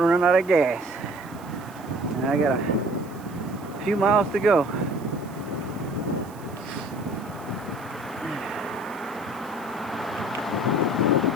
run out of gas. And I got a few miles to go.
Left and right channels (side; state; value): right; noise; hiss, 24 dB below the sound